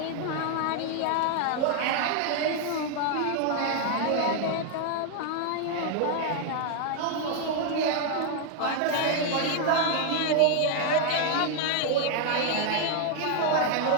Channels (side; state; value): both; different; correlation 0.00